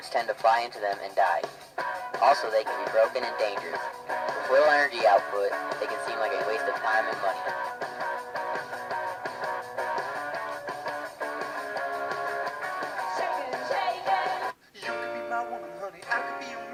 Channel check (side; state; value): both; identical; correlation 1.00